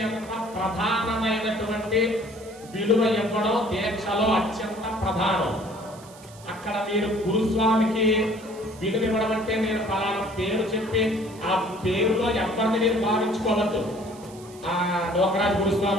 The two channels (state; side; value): noise; right; hiss, 22 dB below the sound